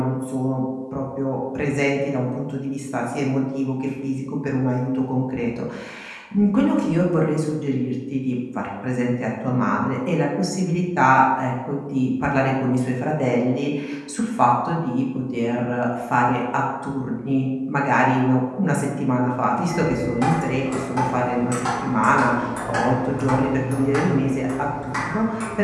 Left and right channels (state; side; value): identical; both; correlation 1.00